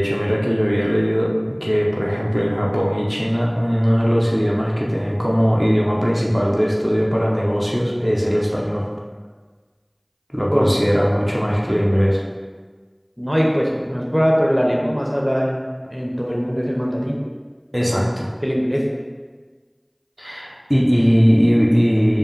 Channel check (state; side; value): identical; both; correlation 1.00